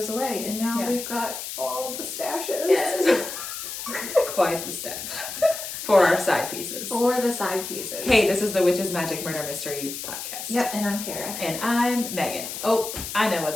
away. And now we've got all the stashes. Yes. Quite the stash. For our side pieces. For the side pieces. Hey, this is the Witches, Magic, Murder, Mystery podcast. Yep, and I'm Kara. And I'm Megan. Oh, I know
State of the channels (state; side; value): noise; left; hiss, 7 dB below the sound